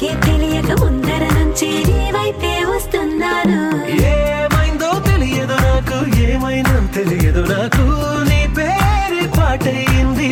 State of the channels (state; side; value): identical; both; correlation 1.00